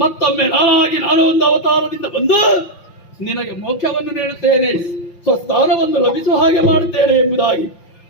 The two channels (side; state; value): right; late; 5.9 ms